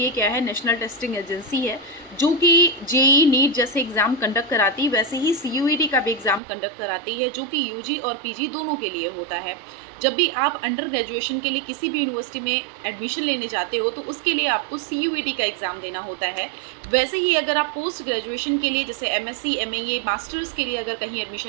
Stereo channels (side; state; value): left; drops out; at 6.4 s